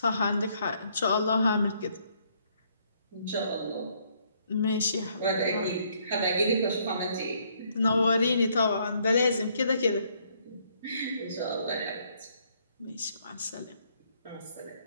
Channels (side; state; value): both; inverted; correlation -0.68